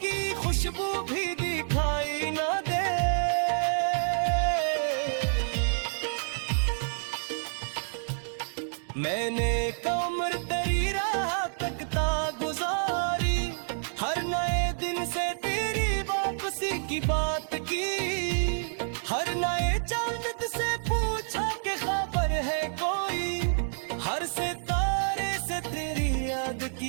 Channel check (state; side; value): silent; left; digital silence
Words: की खुशबू भी दिखाई न दे। मैंने कमर तेरी राह तकता गुजारी, हर नए दिन से तेरी वापसी की बात की, हर नए चांद से पूछा कि खबर है कोई, हर सितारे से तेरी याद